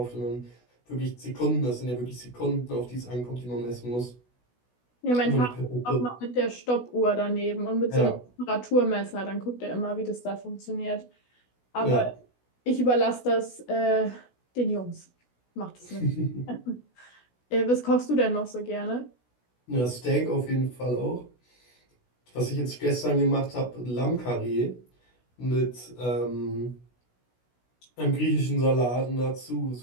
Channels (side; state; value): right; late; 16 ms